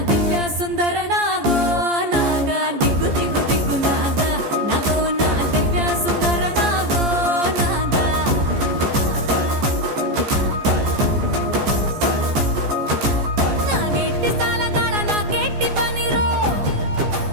దివ్య సుందర నాగో నాగా దిగ్గు దిగ్గు దిగ్గు నాగా నాగో నా దివ్య సుందర నాగో నాగా నాగెట్టి సాలగాడ నాకెట్టి పనిరో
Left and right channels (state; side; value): late; left; 14 ms